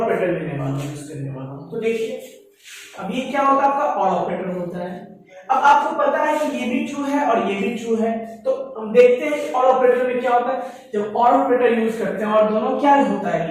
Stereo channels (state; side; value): identical; both; correlation 1.00